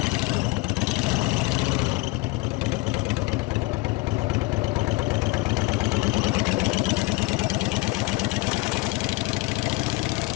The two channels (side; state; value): right; quieter; 22.0 dB